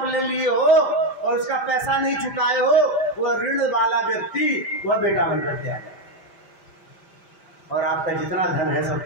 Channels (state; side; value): late; right; 5.1 ms